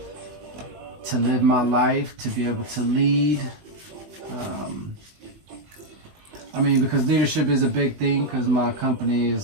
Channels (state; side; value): late; left; 20 ms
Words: to live my life, to be able to lead. Because leadership is a big thing, because my company